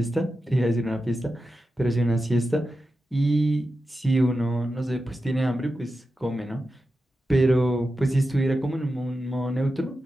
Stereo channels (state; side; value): normal; both; correlation 0.91